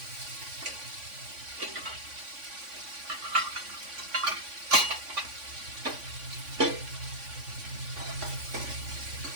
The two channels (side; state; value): left; late; 3.5 ms